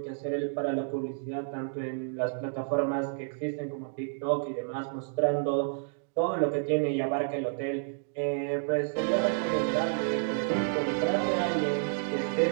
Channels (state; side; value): silent; left; digital silence